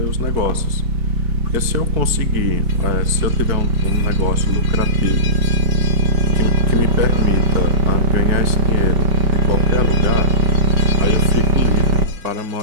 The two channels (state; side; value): late; left; 4.6 ms